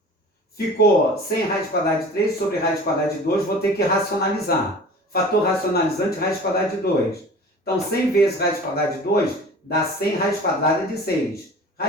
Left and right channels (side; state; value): both; normal; correlation 0.41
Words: Ficou 100 raiz quadrada de 3 sobre raiz quadrada de 2, vou ter que racionalizar. Fator racionalizante, raiz quadrada de 2. Então, 100 vezes raiz quadrada de 2 dá 100 raiz quadrada de 6.